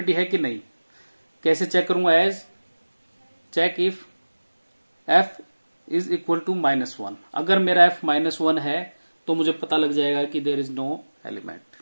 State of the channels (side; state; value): both; inverted; correlation -1.00